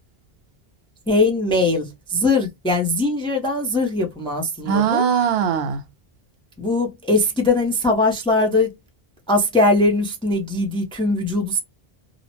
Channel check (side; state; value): both; normal; correlation 0.11